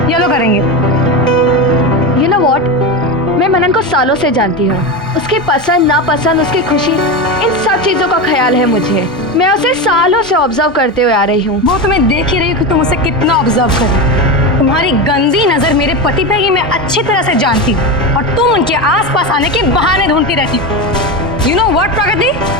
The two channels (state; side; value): normal; both; correlation 0.18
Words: येलो करेंगे। You know what? मैं मनन को सालों से जानती हूँ। उसकी पसंद नापसंद, उसकी खुशी, इन सब चीजों का ख्याल है मुझे। मैं उसे सालों से ऑब्जर्व करते हुए आ रही हूँ। वो तो मैं देख ही रही हूँ कि तुम उसे कितना ऑब्जर्व कर रही हो। तुम्हारी गंदी नजर मेरे पति पे ये मैं अच्छी तरह से जानती हूँ, और तुम उनके आसपास आने के बहाने ढूंढती रहती हो। You know what, Pragati?